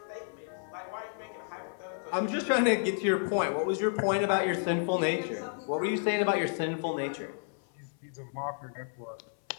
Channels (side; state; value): right; silent; 57 dB below the other